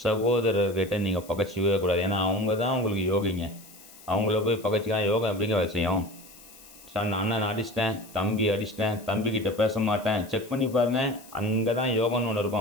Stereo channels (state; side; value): noise; left; hiss, 21 dB below the sound